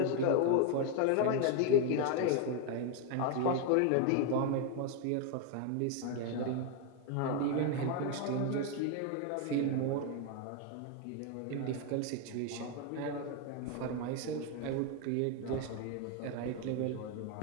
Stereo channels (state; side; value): different; both; correlation 0.01